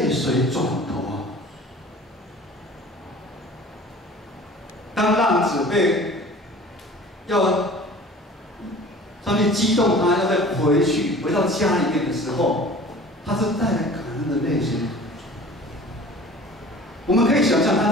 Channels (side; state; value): both; normal; correlation 0.44